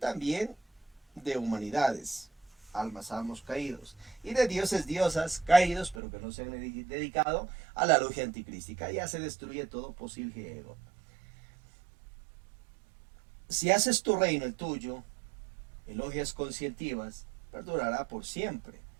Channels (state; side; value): drops out; left; at 6.0 s